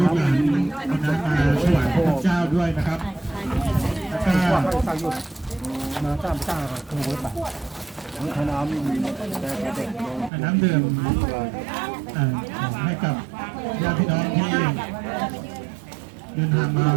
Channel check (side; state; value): left; drops out; at 10.3 s